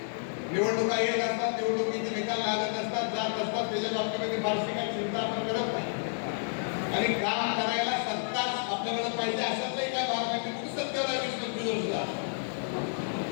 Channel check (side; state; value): right; silent; 58 dB below the other